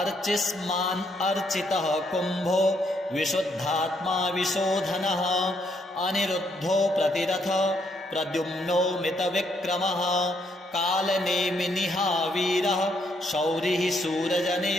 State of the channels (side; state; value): both; normal; correlation 0.73